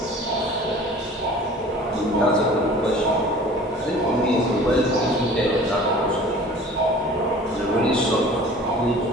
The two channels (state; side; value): normal; both; correlation 0.45